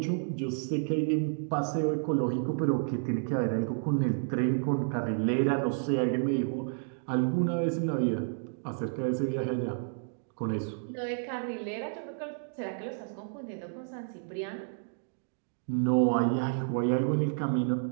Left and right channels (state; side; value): silent; left; digital silence